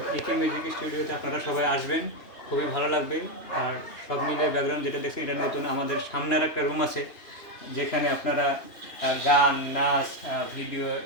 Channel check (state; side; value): late; right; 2.9 ms